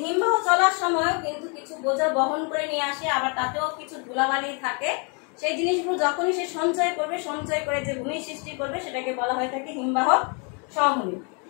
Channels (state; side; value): quieter; right; 35.9 dB